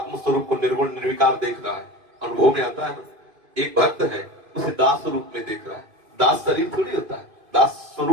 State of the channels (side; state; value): left; late; 2.5 ms